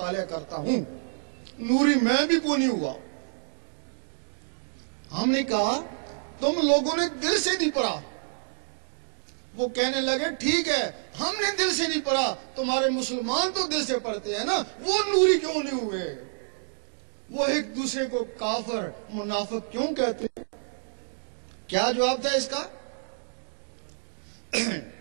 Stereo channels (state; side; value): silent; left; digital silence